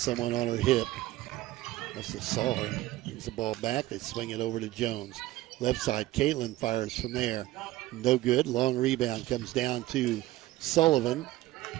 on her hip. Must have saw her. Brings the ball back. They swing it over to Jones. Left side, Caitlin fires from there. No good. Long rebound comes down to Sullivan.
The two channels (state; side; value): quieter; left; 16.6 dB